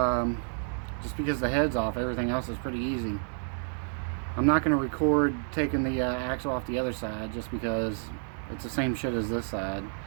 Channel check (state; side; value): silent; left; 58 dB below the other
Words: just because the head's off, everything else is pretty easy. I'm not going to record taking the axle off the other side just because it's the same shit as this side.